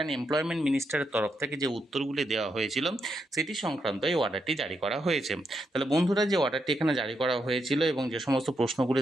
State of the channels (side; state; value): both; normal; correlation 0.81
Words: employment মিনিস্টারের তরফ থেকে যে উত্তরগুলি দেওয়া হয়েছিল সেটি সংক্রান্ত এই অর্ডারটি জারি করা হয়েছে। তাহলে বন্ধুরা, যে অর্ডারটি এখানে জারি করা হয়েছিল এবং যে সমস্ত প্রশ্নগুলি